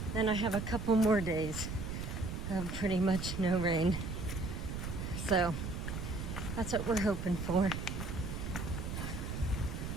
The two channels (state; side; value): noise; right; rumble, 5 dB below the sound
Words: then I have a couple more days of pretty much no rain. So that's what we're hoping for.